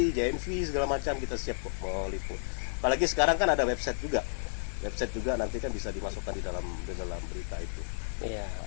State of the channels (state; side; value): silent; right; digital silence